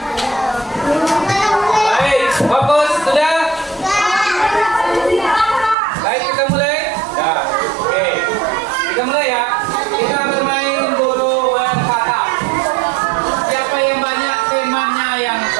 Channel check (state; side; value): drops out; left; at 5.8 s